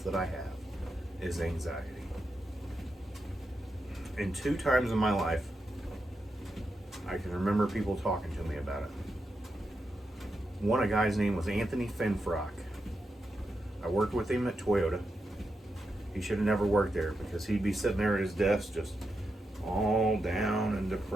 that I have is anxiety. And 2 times in my life, I can remember people talking to me about it. One, a guy's name was Anthony Finfrock. I worked with him at Toyota. He should have never worked there because he'd be sitting there at his desk just all down and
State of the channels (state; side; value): normal; both; correlation 0.86